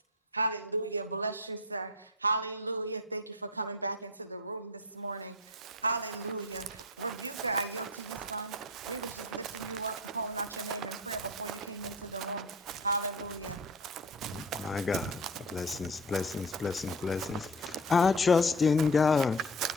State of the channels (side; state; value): both; normal; correlation 0.34